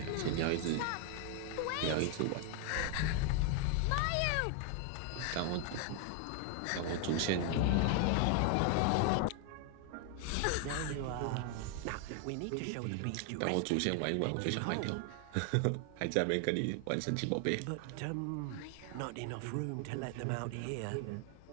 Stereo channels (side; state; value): both; different; correlation 0.00